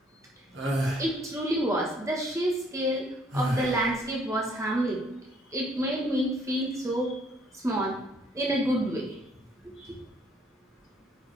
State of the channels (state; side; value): normal; both; correlation 0.64